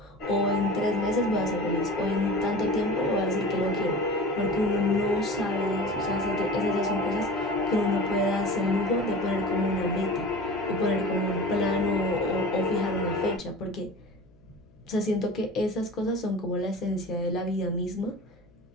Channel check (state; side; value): noise; left; hum, 30 dB below the sound